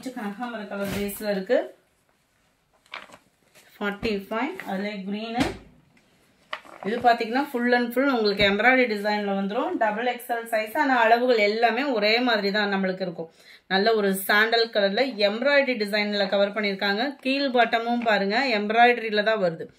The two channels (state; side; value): identical; both; correlation 1.00